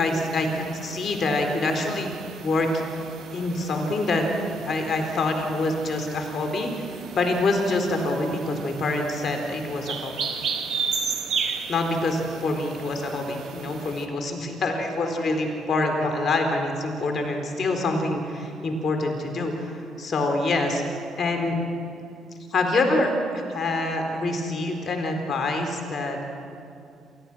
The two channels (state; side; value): normal; both; correlation 0.74